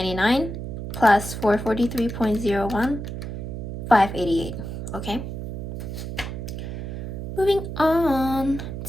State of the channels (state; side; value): noise; right; hum, 7 dB below the sound